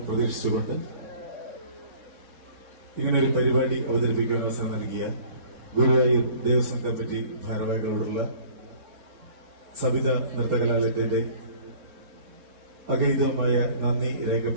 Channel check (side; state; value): left; late; 3.6 ms